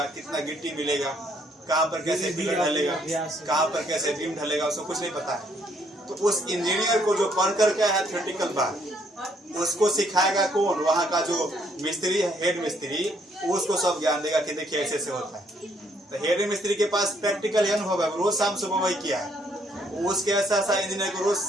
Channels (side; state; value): both; normal; correlation 0.69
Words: कितना गिट्टी मिलेगा, कहाँ पर कैसे पिलर ढलेगा, कहाँ पर कैसे बीम ढलेगा, उसको कुछ नहीं पता है। तो उस इंजीनियर को जो पढ़ करके आया थ्योरेटिकल बात, उसको सिखाएगा कौन? वहाँ का जो मिस्त्री है, हेड मिस्त्री, उसको सब ज्ञान देगा कि देखिए ऐसे ऐसे होता है। तो हेड मिस्त्री के पास प्रैक्टिकल अनुभव है, रोज शाम सुबह वही किया है, उसके ऐसा ऐसा इंजीनियर को रोज